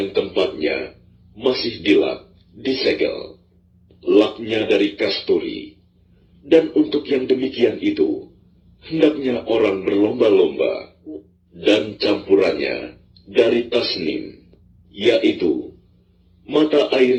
tempatnya masih dilap, disegel. Laknya dari kasturi. Dan untuk yang demikian itu, hendaknya orang berlomba-lomba, dan campurannya dari tasnim, yaitu mata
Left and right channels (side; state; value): both; identical; correlation 1.00